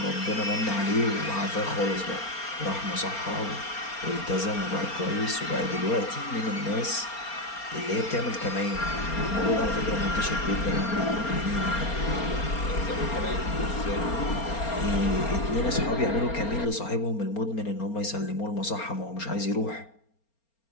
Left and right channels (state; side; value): late; right; 4.3 ms